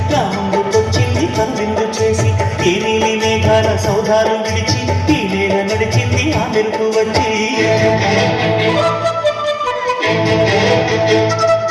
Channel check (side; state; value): both; identical; correlation 1.00